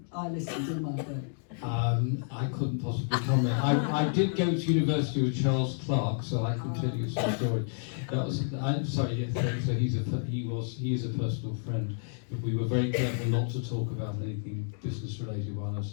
I listened in my day. I couldn't possibly comment. I did go to university with Charles Clarke, so I can tell you some story. I'm sorry. Yes, so he is a personal friend, but we were very careful not to talk about anything business related while I was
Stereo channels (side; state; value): right; silent; digital silence